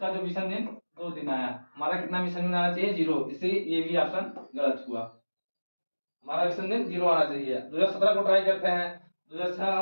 जो विषम दिन 2 दिन आया। हमारा कितना विषम दिन आना चाहिए? 0, इसलिए ये भी ऑप्शन गलत हुआ। हमारा विषम दिन 0 आना चाहिए। 2017 को ट्राई करते हैं। 2006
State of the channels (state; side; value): inverted; both; correlation -1.00